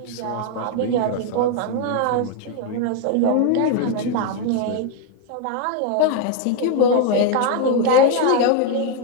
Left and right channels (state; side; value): different; both; correlation 0.01